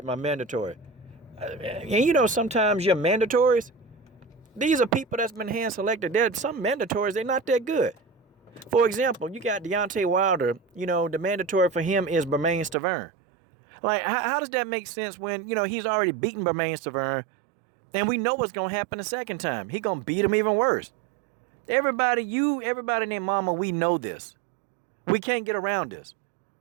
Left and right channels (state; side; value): drops out; left; at 12.8 s